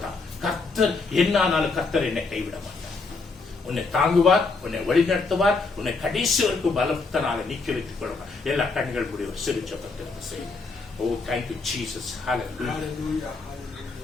கர்த்தர் என்னானாலும் கர்த்தர் என்னை கைவிட மாட்டார். உன்னை தாங்குவார், உன்னை வழிநடத்துவார், உன்னை கடைசி வரைக்கும் பலத்தனால நீக்கி வைத்துக் கொள்வார். எல்லா கண்கள் முடிய ஒரு சிறு ஜபத்தை செய்யும். Oh, thank you, Jesus. Hallelujah.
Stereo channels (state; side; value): quieter; right; 4.0 dB